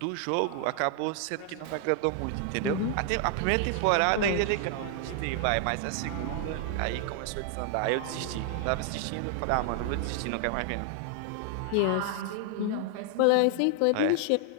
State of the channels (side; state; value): both; different; correlation 0.00